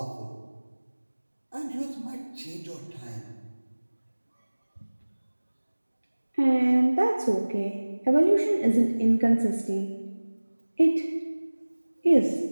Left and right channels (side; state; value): both; inverted; correlation -1.00